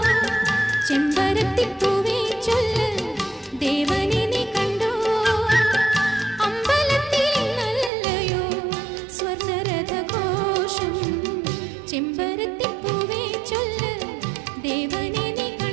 ചെമ്പരത്തിപ്പൂവേ ചൊല്ല് ദേവനെ നീ കണ്ടോ അമ്പലത്തിൽ നല്ലയോ സ്വർണ്ണരഥഘോഷം ചെമ്പരത്തിപ്പൂവേ ചൊല്ല് ദേവനെ നീ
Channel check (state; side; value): drops out; left; at 7.9 s